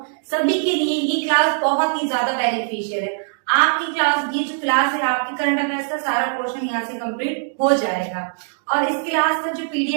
सभी के लिए ये क्लास बहुत ही ज्यादा बेनिफिशियल है। आपकी क्लास, ये जो क्लास है आपकी करंट अफेयर्स का सारा पोर्शन यहाँ से कंप्लीट हो जाएगा। और इस क्लास का जो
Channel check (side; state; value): left; silent; digital silence